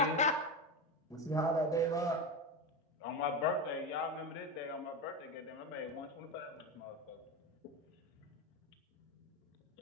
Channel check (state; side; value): normal; both; correlation 0.17